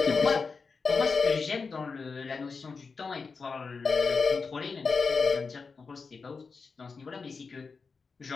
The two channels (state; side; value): quieter; right; 4.8 dB